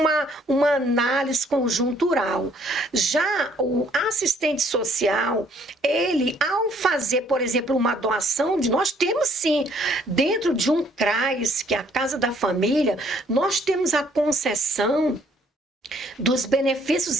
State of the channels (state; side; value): normal; both; correlation 0.63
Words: análise conjuntural. Já o assistente social, ele, ao fazer, por exemplo, uma doação, nós temos sim, dentro de um CRAS, que é a Casa da Família, nós temos a concessão dos